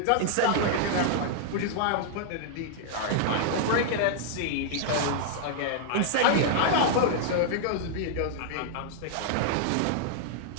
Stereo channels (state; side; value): different; both; correlation -0.01